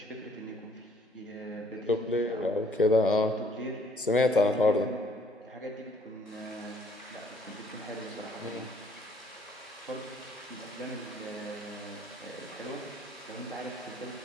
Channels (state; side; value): normal; both; correlation 0.62